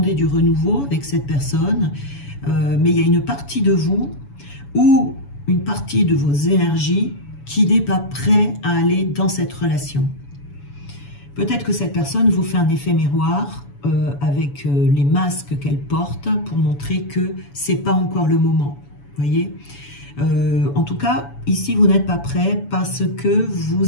du renouveau avec cette personne, mais il y a une partie de vous ou une partie de vos énergies qui n'est pas prêt à aller dans cette relation. Peut-être que cette personne vous fait un effet miroir avec les masques qu'elle porte pour montrer que ce n'est pas encore le moment. Voyez, en tout cas, ici, vous n'êtes pas prêt parce que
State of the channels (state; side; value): late; right; 7.1 ms